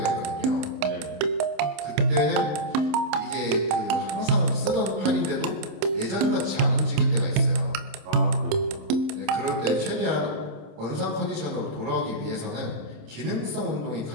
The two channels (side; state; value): left; late; 27 ms